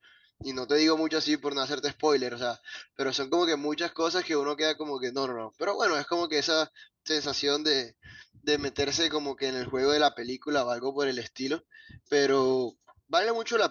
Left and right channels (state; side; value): identical; both; correlation 1.00